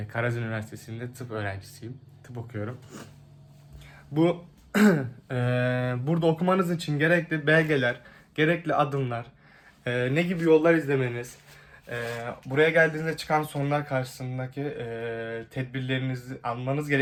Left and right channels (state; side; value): identical; both; correlation 1.00